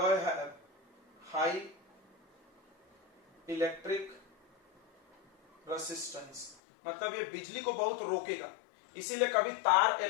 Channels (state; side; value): drops out; right; at 6.6 s